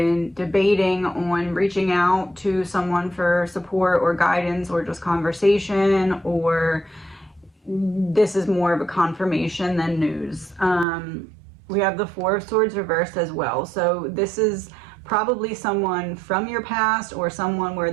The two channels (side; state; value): left; drops out; at 10.9 s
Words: debating on reaching out to someone for support or guidance or just conversation, or this is more of a confirmation than news. We have the 4 of Swords reversed as well. So this is probably someone from your past or someone where